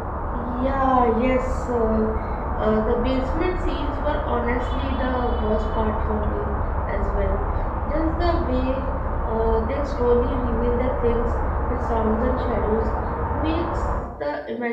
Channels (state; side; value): identical; both; correlation 1.00